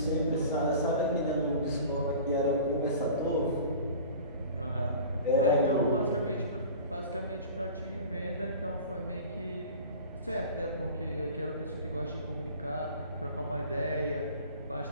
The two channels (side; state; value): both; inverted; correlation -0.40